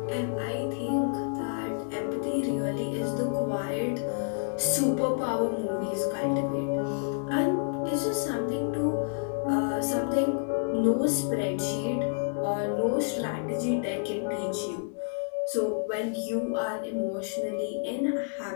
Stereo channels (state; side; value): silent; right; digital silence